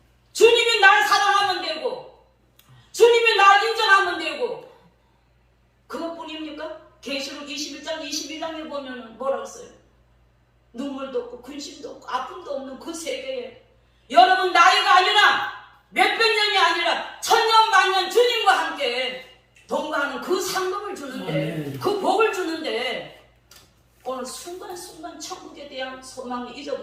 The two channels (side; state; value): both; identical; correlation 1.00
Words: 주님이 날 사랑하면 되고 주님이 날 인정하면 되고 그것뿐입니까? 계시록 21장 22장에 보면 뭐라고 써요? 눈물도 없고 근심도 없고 아픔도 없는 그 세계에 여러분 나이가 아니라 몇백 년이 아니라 천년 만년 주님과 함께 동거하는 그 상급을 주는데 그 복을 주는데 오늘 순간순간 천국에 대한 소망을